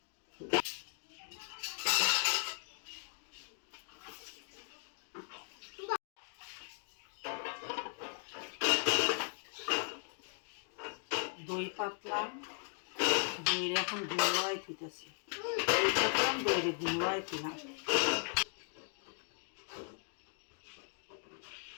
দই পাতলাম, দইয়ের এখন গুঁড়াই থুইতেছি। দই পাতলাম, দইয়ের গুঁড়াই থুইলাম।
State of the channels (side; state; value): right; silent; 53 dB below the other